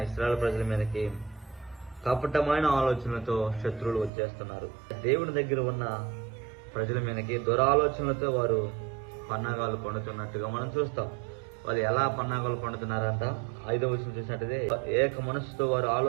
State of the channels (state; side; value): drops out; left; at 4.1 s